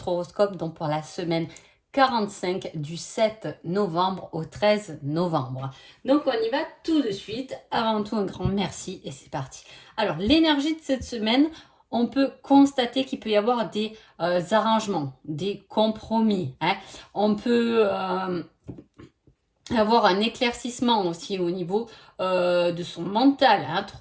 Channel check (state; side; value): identical; both; correlation 1.00